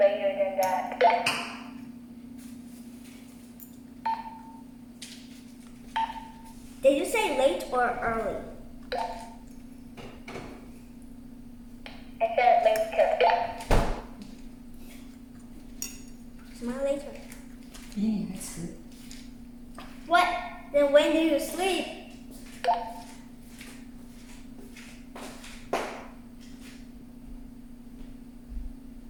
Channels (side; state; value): both; identical; correlation 1.00